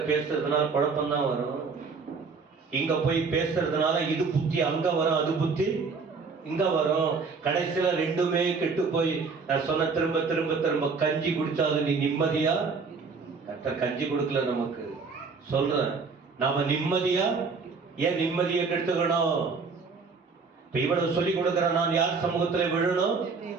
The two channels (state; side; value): quieter; left; 4.8 dB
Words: பேசுறதுனால குழப்பம் தான் வரும். இங்க போய் பேசுறதுனால இது புத்தி அங்க வரும், அது புத்தி இங்க வரும். கடைசியில ரெண்டுமே கெட்டு போய் நான் சொன்ன திரும்ப திரும்ப திரும்ப கஞ்சி குடிச்சாலும் நீ நிம்மதியா? கர்த்தர் கஞ்சி கொடுக்கல நமக்கு. சொல்றேன், நாம நிம்மதியா? ஏன் நிம்மதியை கெடுத்துக்கணும்? இப்ப இவ்வளவு சொல்லி கொடுக்கிற நான் யார் சமூகத்துல விழணும்?